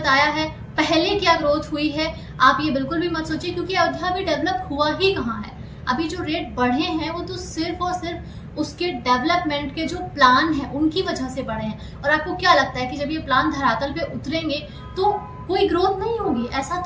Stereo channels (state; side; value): identical; both; correlation 1.00